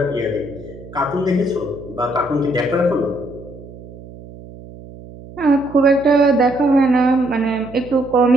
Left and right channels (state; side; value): noise; right; hum, 17 dB below the sound